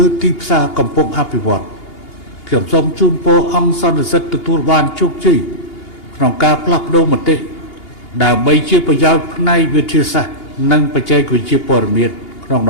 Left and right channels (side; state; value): right; late; 2.8 ms